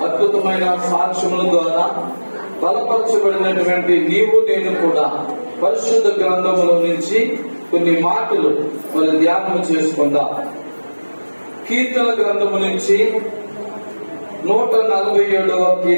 అద్భుతమైన సాక్ష్యముల ద్వారా బలపరచబడినటువంటి నీవు నేను కూడా పరిశుద్ధ గ్రంథముల నుంచి కొన్ని మాటలు మరి ధ్యానం చేసుకుందాం. కీర్తన గ్రంథము నుంచి 147వ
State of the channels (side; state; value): both; inverted; correlation -1.00